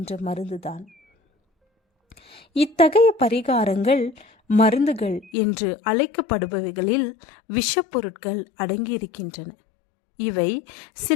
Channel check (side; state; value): right; drops out; at 5.3 s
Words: மருந்துதான். இத்தகைய பரிகாரங்கள், மருந்துகள் என்று அழைக்கப்படுபவைகளில் விஷப்பொருட்கள் அடங்கியிருக்கின்றன. இவை